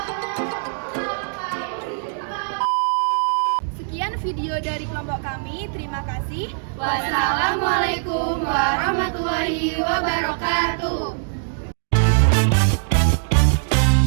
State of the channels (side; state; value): left; silent; digital silence